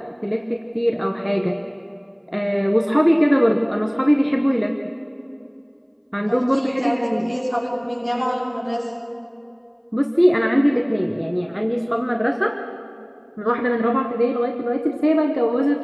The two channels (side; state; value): both; identical; correlation 1.00